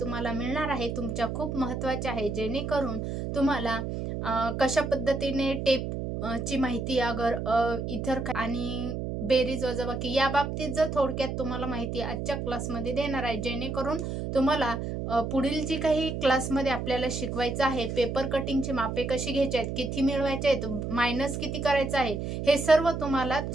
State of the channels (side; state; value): right; noise; hum, 4 dB below the sound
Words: तुम्हाला मिळणार आहे तुमच्या खूप महत्त्वाची आहे, जेणेकरून तुम्हाला कशा पद्धतीने टेपची माहिती अगर इतर आणि बेरीज वजाबाकी या बाबतीत जर थोडक्यात तुम्हाला माहिती आजच्या क्लासमध्ये देणार आहे, जेणेकरून तुम्हाला पुढील जी काही क्लासमध्ये आपल्याला शिकवायचं आहे, पेपर कटिंगची मापे कशी घ्यायची आहेत, किती मिळवायचे आहेत, मायनस किती करायचं आहे, हे सर्व तुम्हाला